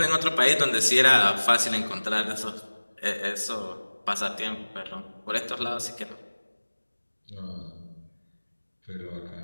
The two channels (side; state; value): both; inverted; correlation -1.00